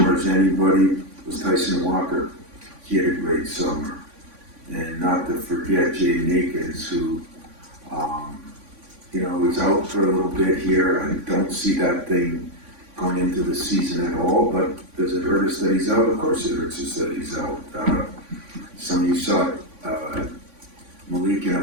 as anybody was Tyson Walker. He had a great summer. And not to forget Jaden Akins, who, was out for a little bit here. I don't see that thing going into the season at all, but does it hurt us that he's out? Of course it hurts us that he's out. Some of you saw Malik in a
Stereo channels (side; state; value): left; late; 3.5 ms